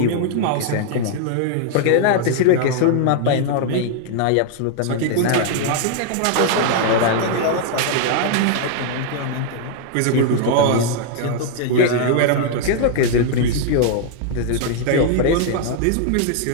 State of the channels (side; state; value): both; different; correlation 0.00